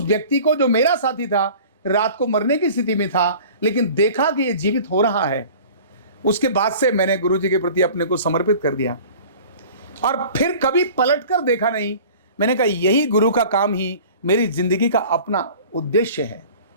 व्यक्ति को, जो मेरा साथी था, रात को मरने की स्थिति में था, लेकिन देखा कि ये जीवित हो रहा है। उसके बाद से मैंने गुरुजी के प्रति अपने को समर्पित कर दिया और फिर कभी पलट कर देखा नहीं। मैंने कहा यही गुरु का काम ही मेरी जिंदगी का अपना उद्देश्य है,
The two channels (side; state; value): both; inverted; correlation -0.44